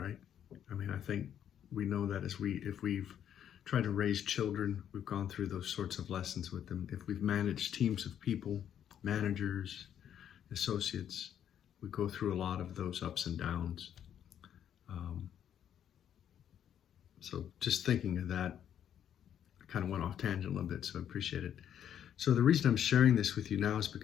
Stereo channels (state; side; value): quieter; right; 9.6 dB